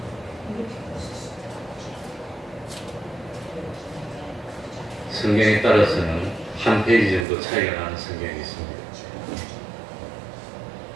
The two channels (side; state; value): left; drops out; at 7.2 s